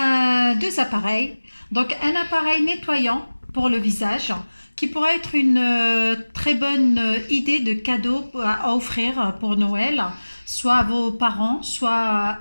appareils. Donc un appareil nettoyant pour le visage qui pourrait être une très bonne idée de cadeau à offrir pour Noël, soit à vos parents, soit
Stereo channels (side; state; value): both; inverted; correlation -1.00